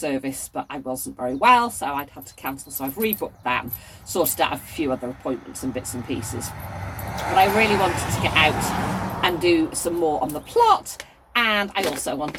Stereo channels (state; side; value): identical; both; correlation 1.00